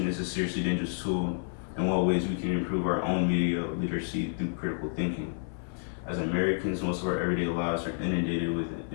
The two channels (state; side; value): silent; right; 58 dB below the other